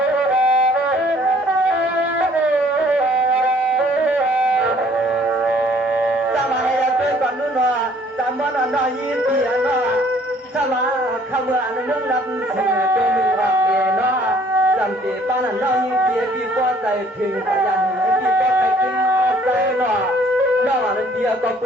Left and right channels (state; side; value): normal; both; correlation 0.59